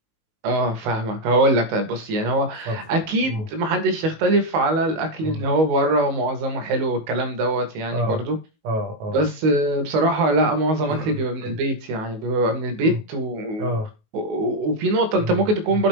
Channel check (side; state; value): left; late; 19 ms